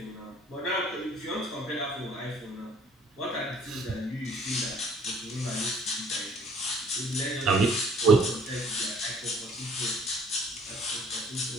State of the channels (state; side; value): normal; both; correlation 0.58